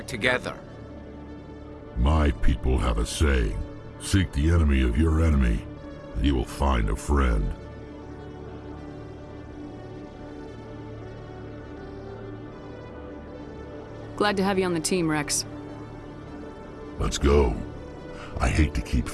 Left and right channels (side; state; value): both; identical; correlation 1.00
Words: together. My people have a saying. Seek the enemy of your enemy, and you will find a friend. Glad to have you on the team, Rex. Let's go. I hate to keep